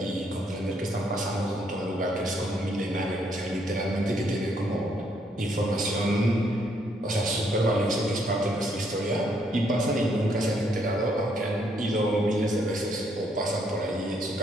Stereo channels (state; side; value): normal; both; correlation 0.71